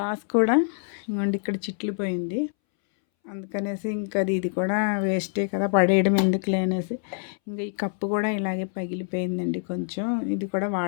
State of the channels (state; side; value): silent; right; 61 dB below the other